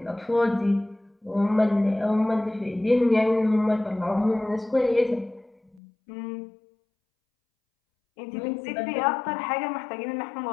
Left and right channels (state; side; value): drops out; right; at 5.8 s